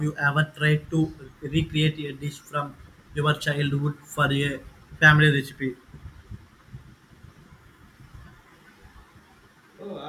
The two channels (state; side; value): identical; both; correlation 1.00